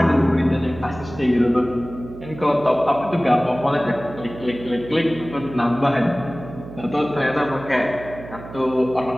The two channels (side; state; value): right; noise; hum, 14 dB below the sound